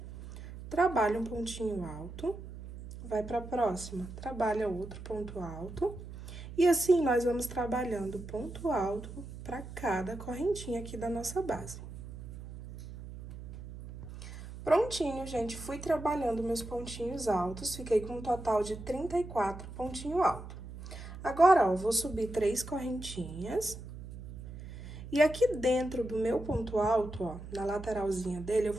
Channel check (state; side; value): noise; right; hum, 12 dB below the sound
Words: trabalha um pontinho alto, vai para a próxima, trabalha outro ponto alto, e assim nós vamos trabalhando ponto alto para cada correntinha aqui da nossa base. Prontinho, gente, fui trabalhando meus pontinhos altos, fiquei com um total de 34 pontinho alto. Agora, ó, vou subir 3 correntinhas. E aqui dentro do meu ponto alto, ó, na lateralzinha dele, eu